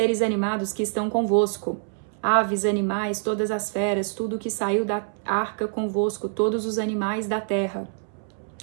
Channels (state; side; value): silent; left; 61 dB below the other